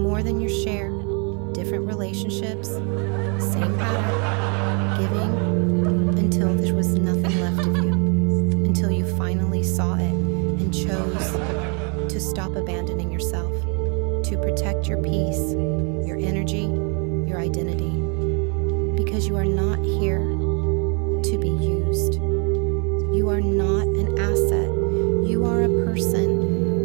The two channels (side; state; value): left; quieter; 35.9 dB